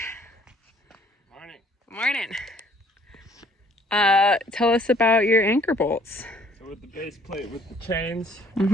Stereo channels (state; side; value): normal; both; correlation 0.60